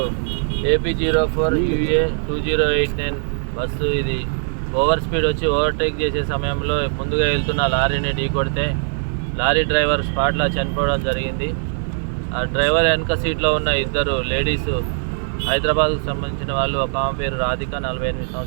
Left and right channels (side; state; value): left; silent; digital silence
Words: AP04UA 2089 బస్సు. ఇది ఓవర్ స్పీడ్ వచ్చి ఓవర్టేక్ చేసే సమయంలో ముందుగా వెళ్తున్న లారీని ఢీకొడితే లారీ డ్రైవర్ స్పాట్లో చనిపోవడం జరిగింది. ఆ డ్రైవర్ వెనక సీట్లో ఉన్న ఇద్దరు లేడీస్ హైదరాబాద్కు సంబంధించిన వాళ్ళు. ఒక ఆమె పేరు రాధిక 48